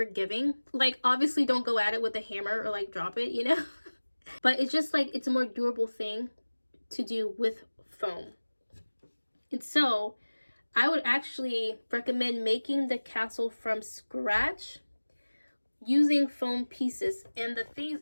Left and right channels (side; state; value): both; inverted; correlation -1.00